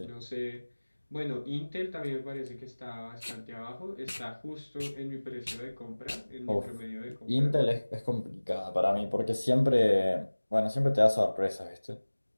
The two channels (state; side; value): inverted; both; correlation -1.00